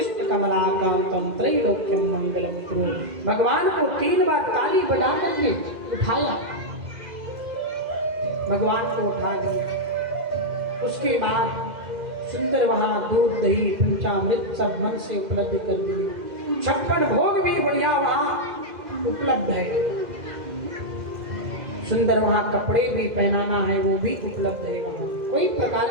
कमलाकांतम, त्रैलोक्यम मंगलम कुरु। भगवान को 3 बार ताली बजा करके उठाया, भगवान को उठा दिया। उसके बाद सुंदर वहाँ दूध दही पंचामृत सब मन से उपलब्ध कर दिए। 56 भोग भी बढ़िया वहाँ उपलब्ध है। सुंदर वहाँ कपड़े भी पहनाना है वो भी उपलब्ध है, वहाँ कोई प्रकार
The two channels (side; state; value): left; late; 2.0 ms